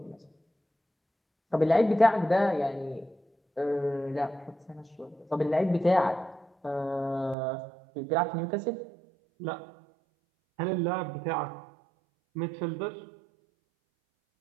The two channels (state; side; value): drops out; left; at 7.4 s